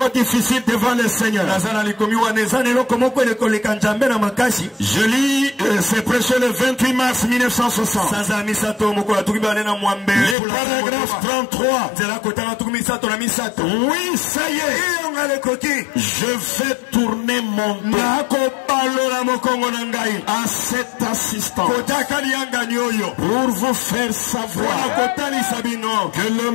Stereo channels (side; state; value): right; drops out; at 10.4 s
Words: difficile devant le Seigneur? Je lis, c'est prêché le 28 mars 1960. Le paragraphe 33. Oui, ça y est. Je vais tourner mon dos à cet assistant pour vous faire savoir que le